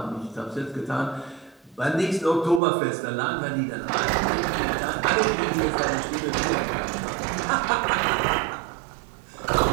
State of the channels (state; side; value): drops out; left; at 2.6 s